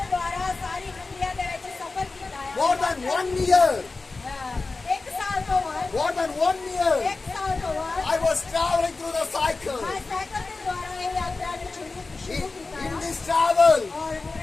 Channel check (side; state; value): right; quieter; 3.8 dB